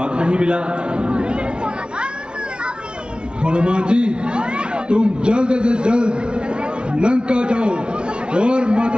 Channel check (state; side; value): late; left; 0.056 ms